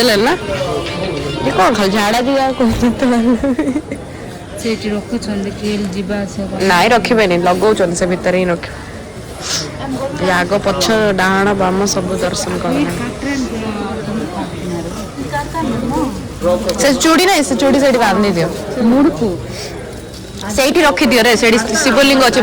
लेना ये कौन खाल झाड़ा दिया को सेठी रखु छंदे केल जीवा से नाइ रखिबे नहीं लगौ छन से भीतर ही रख आग पछ डाहाण बाम सब दर्शन कर से चूड़ी नहीं से चूड़ी सेठी बांधी दियो मुड़कू सेठी रखि दियो रे सेठी शिवलिंग अछि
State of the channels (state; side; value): identical; both; correlation 1.00